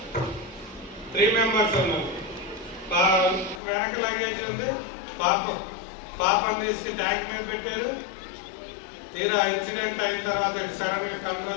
3 మెంబర్స్ ఉన్నారు. వెనక లగేజ్ ఉంది. పాపను తీసుకు ట్యాంక్ మీద పెట్టారు. తీరా ఇన్సిడెంట్ అయిన తర్వాత సడన్ గా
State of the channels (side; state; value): right; drops out; at 3.6 s